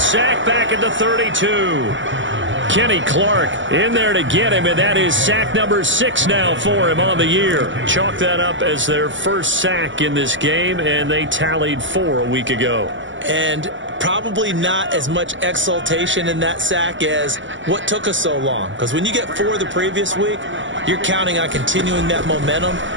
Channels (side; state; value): left; late; 0.55 ms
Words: back at the 32. Kenny Clark in there to get him, and that is sack number 6 now for him on the year. Chalk that up as their first sack in this game, and they tallied 4 a week ago. And probably not as much exultation in that sack as what took us so long. Because when you get 4 the previous week, you're counting on continuing that momentum.